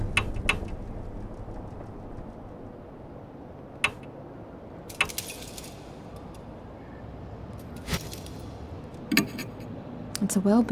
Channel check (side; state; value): both; identical; correlation 1.00